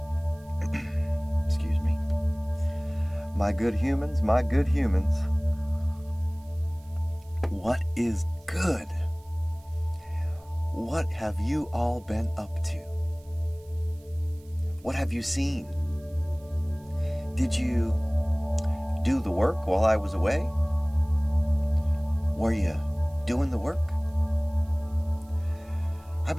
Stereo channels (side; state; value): right; noise; hiss, 29 dB below the sound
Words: Excuse me. My good humans, what is good? What have you all been up to? What have you seen? Did you do the work while I was away? Were you doing the work? I've